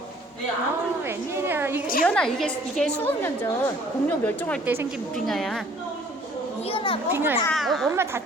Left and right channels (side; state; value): both; normal; correlation 0.56